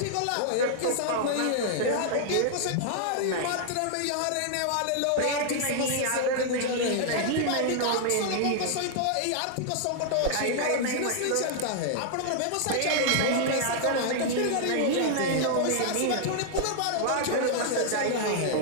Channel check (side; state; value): both; different; correlation -0.01